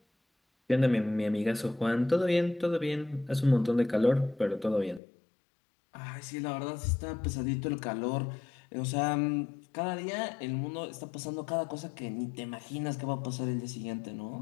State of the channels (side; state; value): right; drops out; at 5.0 s